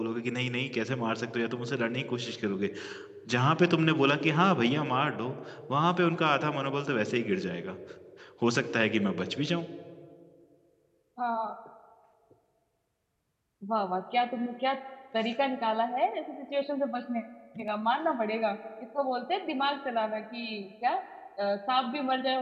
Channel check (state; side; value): identical; both; correlation 1.00